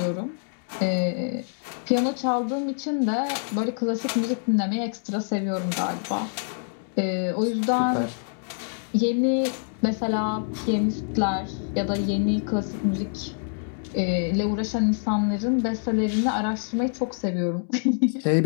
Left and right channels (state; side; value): silent; right; digital silence